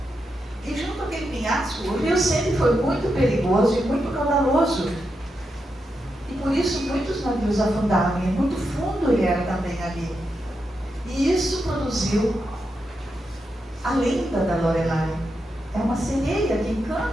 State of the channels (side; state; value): both; normal; correlation 0.86